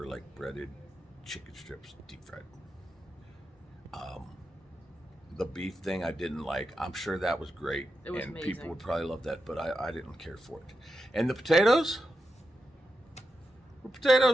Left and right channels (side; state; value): both; normal; correlation 0.89